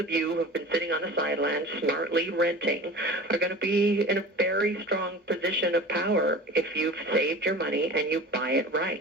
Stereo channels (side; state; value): both; normal; correlation 0.37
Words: you who have been sitting on the sidelines smartly renting are going to be in a very strong position of power if you've saved your money and you buy it